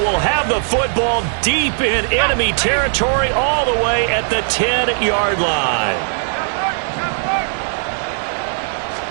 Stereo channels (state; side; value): silent; left; digital silence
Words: have the football deep in enemy territory all the way at the 10-yard line.